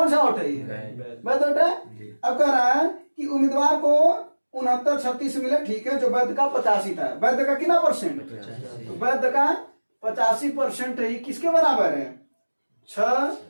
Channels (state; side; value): inverted; both; correlation -1.00